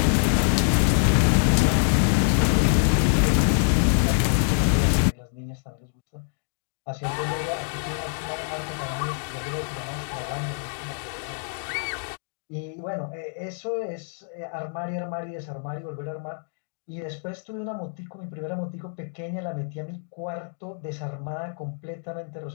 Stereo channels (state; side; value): silent; right; digital silence